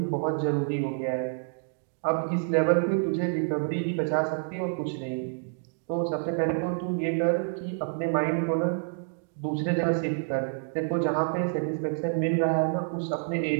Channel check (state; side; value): silent; left; 59 dB below the other